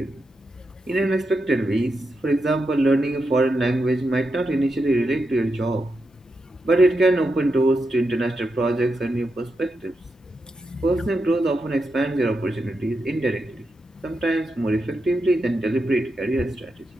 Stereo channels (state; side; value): normal; both; correlation 0.86